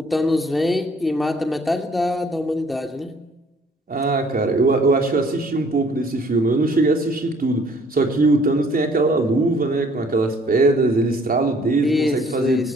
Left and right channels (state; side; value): normal; both; correlation 0.59